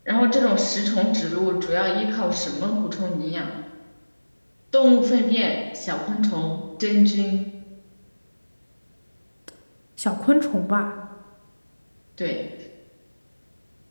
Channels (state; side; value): inverted; both; correlation -1.00